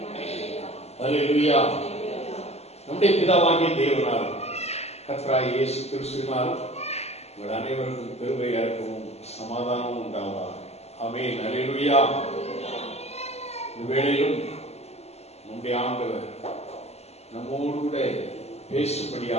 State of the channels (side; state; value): right; late; 0.30 ms